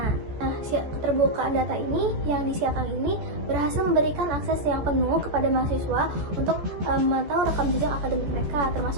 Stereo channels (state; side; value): late; left; 14 ms